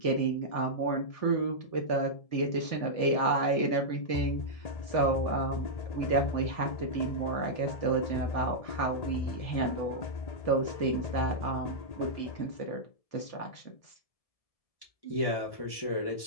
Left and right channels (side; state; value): right; late; 1.7 ms